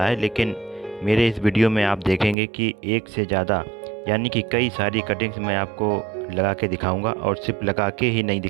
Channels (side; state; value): left; drops out; at 2.4 s